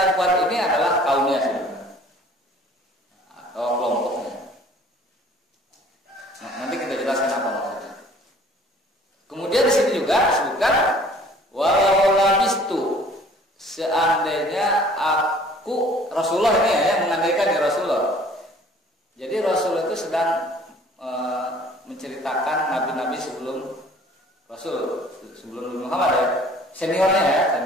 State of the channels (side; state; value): both; normal; correlation 0.52